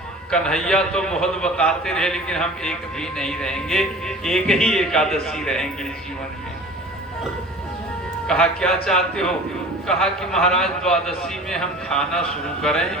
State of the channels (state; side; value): normal; both; correlation 0.41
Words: कन्हैया तो बहुत बताते रहे, लेकिन हम एक भी नहीं रहेंगे, एक ही एकादशी रहेंगे जीवन में। कहा क्या चाहते हो? कहा कि महाराज द्वादशी में हम खाना शुरू करें,